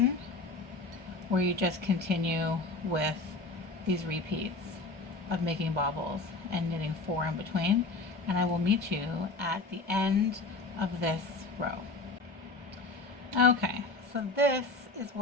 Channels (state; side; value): quieter; right; 3.5 dB